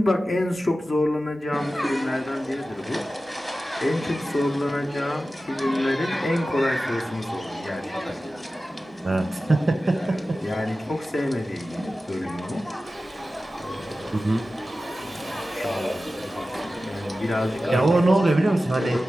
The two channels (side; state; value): both; normal; correlation 0.95